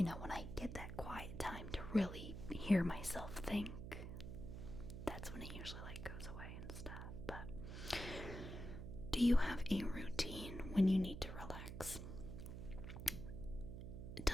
when I get that quiet time to really hear myself think, that's when it usually goes away and stuff. But do you have a routine when you need to relax?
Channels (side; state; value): right; noise; hum, 8 dB below the sound